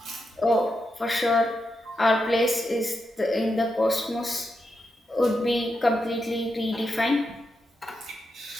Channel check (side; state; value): both; normal; correlation 0.85